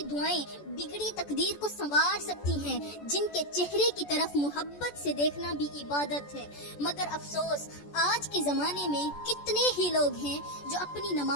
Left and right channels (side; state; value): right; late; 14 ms